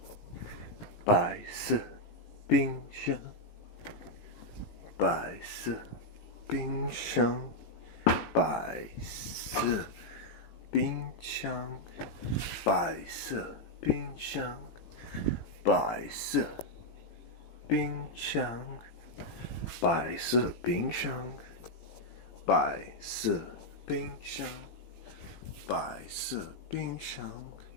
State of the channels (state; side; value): late; right; 18 ms